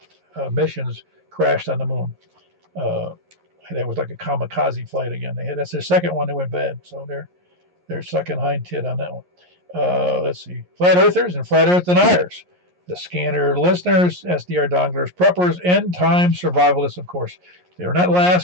missions crashed on the moon. That was like a kamikaze flight again. That's their second one that went bad, so they're sucking hind tit on that one. Let's see, flat earthers and flat earth deniers, the scanner listeners, SDR donglers, preppers, end time survivalists, of course. They're not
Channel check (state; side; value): late; left; 11 ms